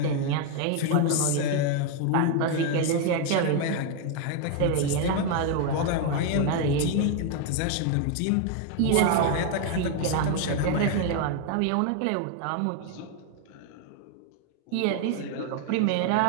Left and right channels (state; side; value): different; both; correlation 0.01